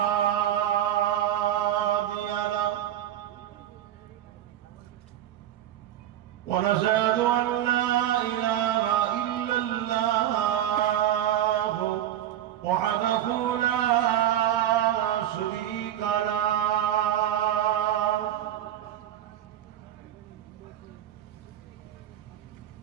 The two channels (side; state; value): left; quieter; 11.9 dB